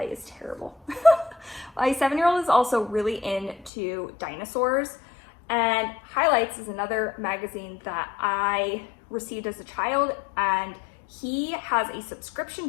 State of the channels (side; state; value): right; drops out; at 3.7 s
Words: is terrible. My 7-year-old is also really into dinosaurs, and Highlights is another magazine that I received as a child, and he has a subscription